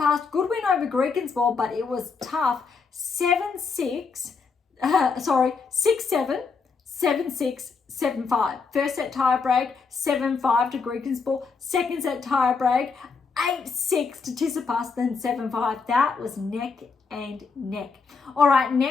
good win over Greekensborg, but it was tough. 6-7, 7-6, 7-5. First set tie break, 7-5 to Greekensborg. Second set tie break, 8-6 to Tsitsipas, then 7-5. That was neck and neck. All right,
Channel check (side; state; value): right; quieter; 5.0 dB